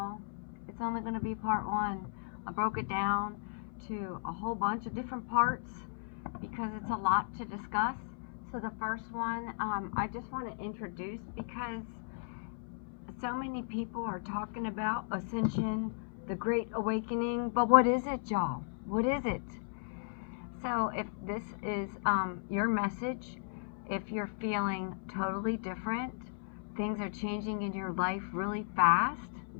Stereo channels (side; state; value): right; silent; 54 dB below the other